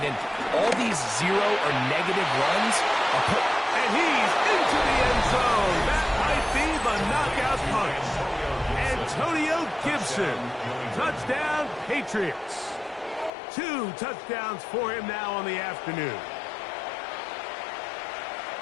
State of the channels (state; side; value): drops out; right; at 13.3 s